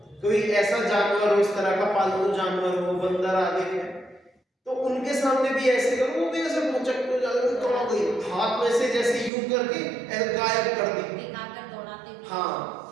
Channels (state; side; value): drops out; left; at 9.3 s